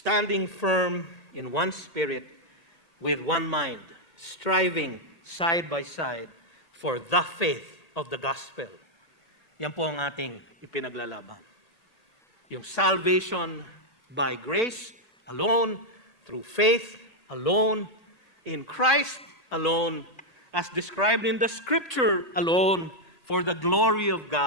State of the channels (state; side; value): late; right; 1.8 ms